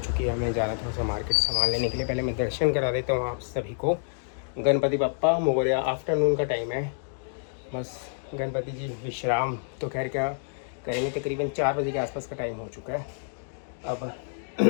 है, हमें जाना थोड़ा सा मार्केट सामान लेने के लिए। पहले मैं दर्शन करा देता हूँ आप सभी को। गणपति बप्पा मोरया। आफ्टरनून का टाइम है, बस गणपति जी विश्राम तो खैर क्या करेंगे, तकरीबन 4 बजे के आसपास का टाइम हो चुका है। अब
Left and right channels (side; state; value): right; silent; digital silence